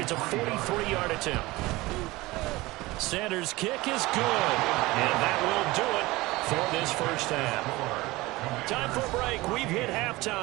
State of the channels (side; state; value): left; quieter; 20.4 dB